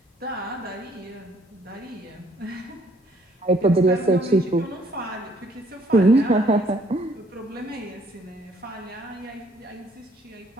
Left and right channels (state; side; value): normal; both; correlation 0.64